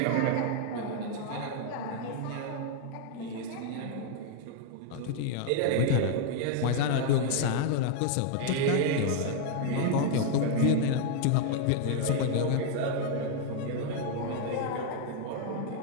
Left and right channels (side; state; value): both; different; correlation 0.00